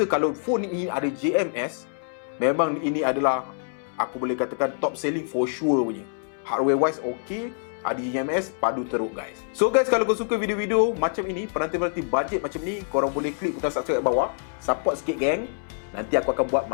kalau phone ini ada JMS, memang ini adalah, aku boleh katakan, top selling for sure punya. Hardware wise okay, ada JMS, padu teruk guys. So guys, kalau kau suka video-video macam ini, penanti-penanti budget macam ni, korang boleh klik butang subscribe kat bawah. Support sikit geng. Nanti aku akan buat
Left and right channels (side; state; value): right; silent; 61 dB below the other